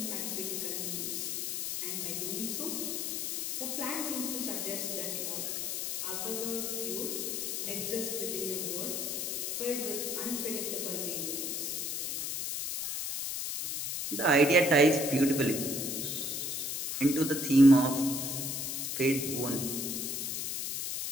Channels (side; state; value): left; noise; hiss, 2 dB below the sound